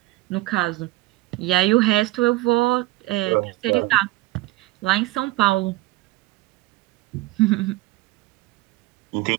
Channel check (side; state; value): left; quieter; 19.1 dB